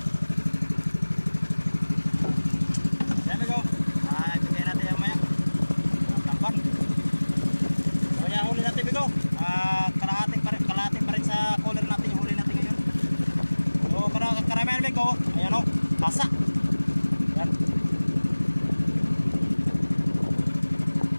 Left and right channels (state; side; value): inverted; both; correlation -1.00